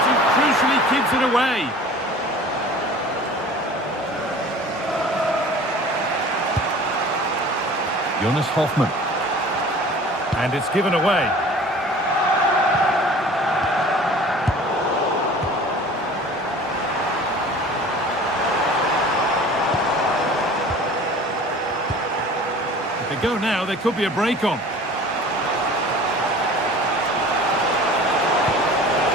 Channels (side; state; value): both; normal; correlation 0.44